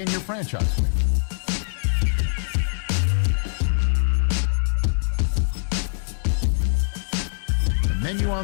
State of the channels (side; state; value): right; silent; 63 dB below the other